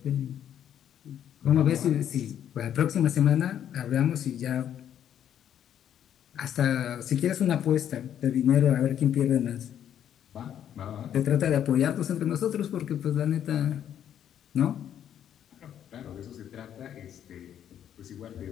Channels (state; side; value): quieter; right; 9.9 dB